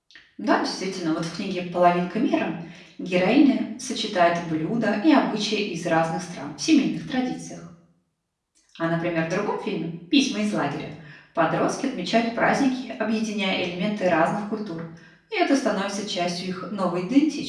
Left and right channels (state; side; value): identical; both; correlation 1.00